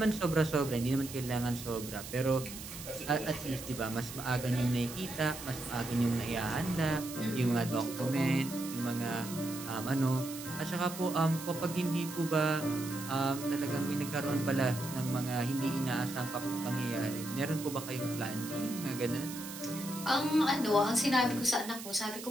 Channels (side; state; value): right; noise; hiss, 11 dB below the sound